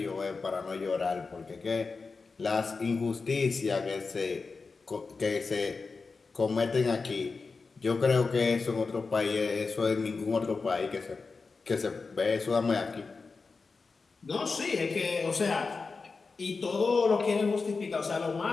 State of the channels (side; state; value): right; quieter; 4.4 dB